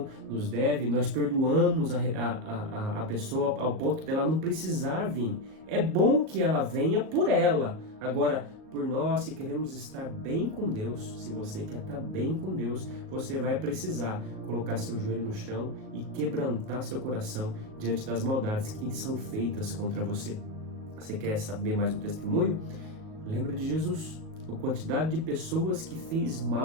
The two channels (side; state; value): left; late; 38 ms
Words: nós perdoamos a pessoa ao ponto dela não precisar vir. É bom que ela venha por ela. Agora, por nós que queremos estar bem com Deus, se você quer estar bem com Deus, você vai precisar colocar seu joelho no chão e quebrantar seu coração diante das maldades que são feitas contra você. Você quer saber mais um testemunho? Lembra de Jesus, a quantidade de pessoas que fez